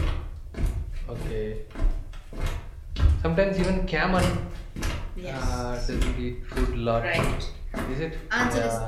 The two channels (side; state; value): both; identical; correlation 1.00